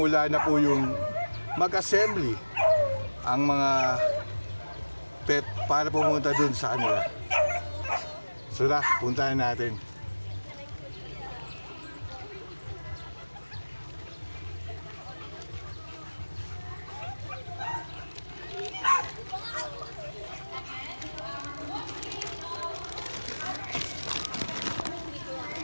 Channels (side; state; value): both; inverted; correlation -1.00